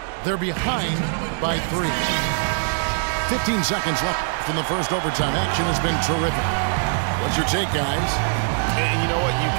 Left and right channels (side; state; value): left; silent; digital silence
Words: They're behind by 3. 15 seconds left in the first overtime. Action has been terrific. What's your take, guys? And you know what? You